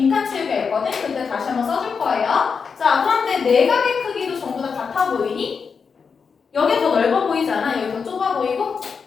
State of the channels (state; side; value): quieter; right; 5.7 dB